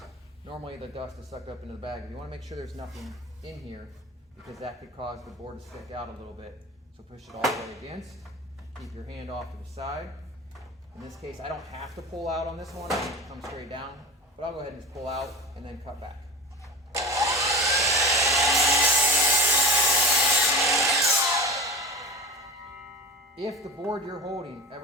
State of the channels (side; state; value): both; normal; correlation 0.33